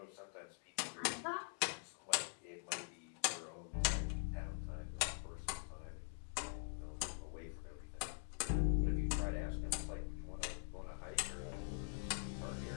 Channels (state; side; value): silent; right; digital silence